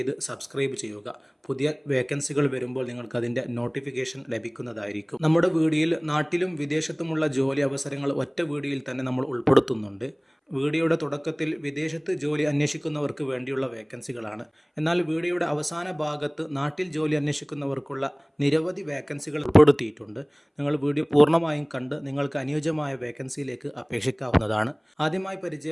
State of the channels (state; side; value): identical; both; correlation 1.00